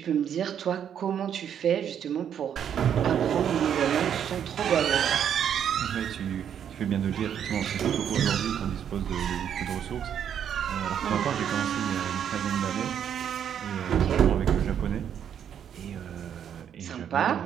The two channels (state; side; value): quieter; left; 8.9 dB